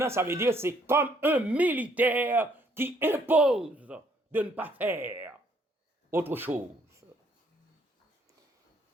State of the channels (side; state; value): both; normal; correlation 0.66